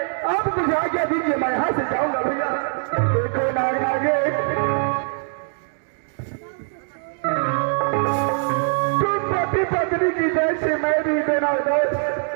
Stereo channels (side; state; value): left; silent; 59 dB below the other